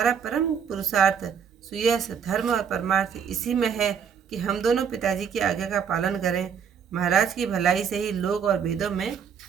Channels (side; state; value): left; quieter; 7.3 dB